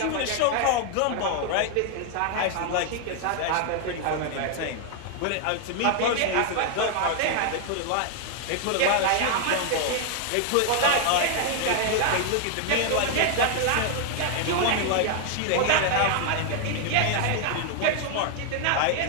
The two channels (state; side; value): different; both; correlation 0.00